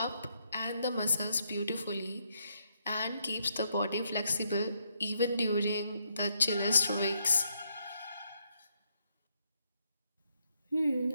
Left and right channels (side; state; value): both; inverted; correlation -0.76